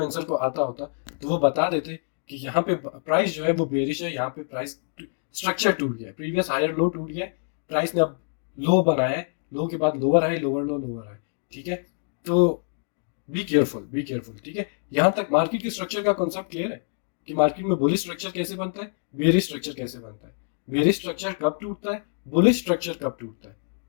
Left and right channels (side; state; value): right; silent; 61 dB below the other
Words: को आता होता तो वो बता देते कि यहाँ पे प्राइस जो है वो बेरिश है, यहाँ पे प्राइस स्ट्रक्चर टूट गया, प्रीवियस हायर लो टूट गया, प्राइस ने अब लो बनाया है, लो के बाद lower high lower low lower high, ठीक है। तो बी केयरफुल, ठीक है। यहाँ तक मार्केट के स्ट्रक्चर का कॉन्सेप्ट क्लियर है कि मार्केट में बुलिश स्ट्रक्चर कैसे बनता है, बेरिश स्ट्रक्चर कैसे बनता है, बेरिश स्ट्रक्चर कब टूटता है, बुलिश स्ट्रक्चर कब टूटता है,